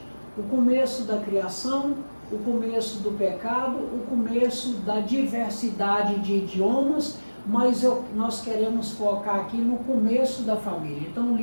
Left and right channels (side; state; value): both; inverted; correlation -1.00